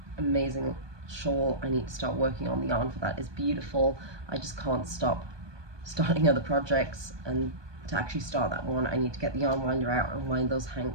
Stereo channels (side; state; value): left; late; 1.2 ms